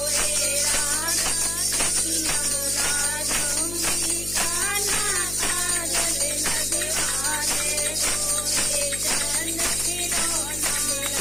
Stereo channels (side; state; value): left; noise; hum, 10 dB below the sound